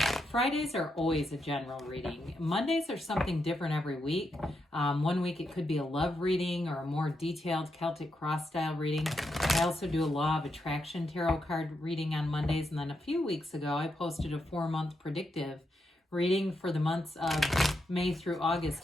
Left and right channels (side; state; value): both; normal; correlation 0.83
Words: Fridays are always a general reading. Mondays are something different every week. One week it could be a love reading or a more detailed Celtic cross style reading. I also do a Law of Attraction tarot card reading on Mondays. And then a few weeks ago, I posted a 4-month predictive reading for the months of May through August.